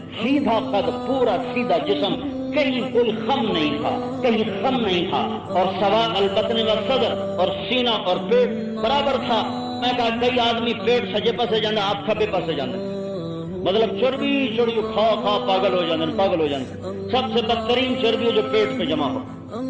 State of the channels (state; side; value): identical; both; correlation 1.00